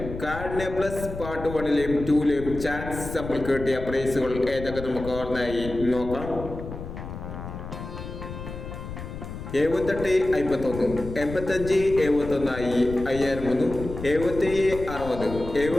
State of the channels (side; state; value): left; noise; rumble, 9 dB below the sound